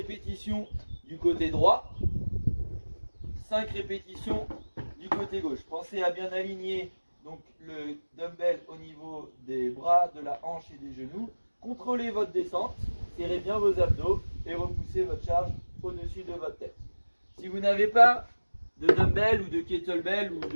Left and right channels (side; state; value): both; inverted; correlation -1.00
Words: du côté droit, 5 répétitions du côté gauche. Pensez à bien aligner donc le dumbbell au niveau des bras, de la hanche et des genoux. Contrôlez votre descente, serrez bien vos abdos et repoussez votre charge au-dessus de votre tête. Si vous n'avez pas de dumbbell ou de kettlebell ou